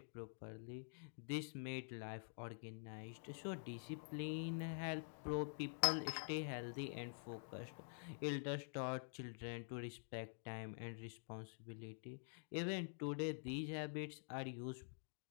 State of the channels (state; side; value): silent; right; digital silence